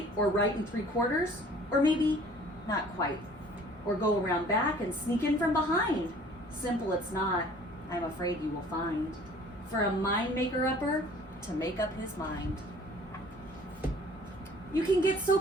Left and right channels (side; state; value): both; normal; correlation 0.51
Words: in 3/4, or maybe not quite, or go around back and sneak in from behind? Simple it's not, I'm afraid you will find, for a mind maker-upper to make up his mind. You can get so